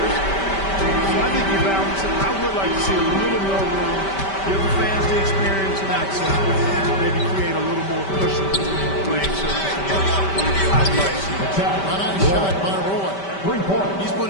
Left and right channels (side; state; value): right; late; 5.1 ms